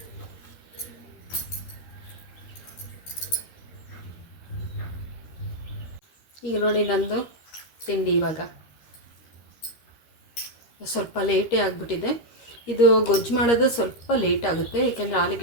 ಈಗ ನೋಡಿ ನಂದು ತಿಂಡಿ ಇವಾಗ ಸ್ವಲ್ಪ ಲೇಟೇ ಆಗಿಬಿಟ್ಟಿದೆ. ಇದು ಗೊಜ್ಜು ಮಾಡೋದು ಸ್ವಲ್ಪ ಲೇಟ್ ಆಗುತ್ತೆ, ಏಕೆಂದರೆ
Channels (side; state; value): right; late; 13 ms